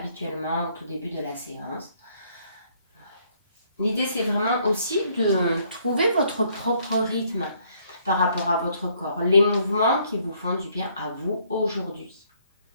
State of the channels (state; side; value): inverted; both; correlation -0.66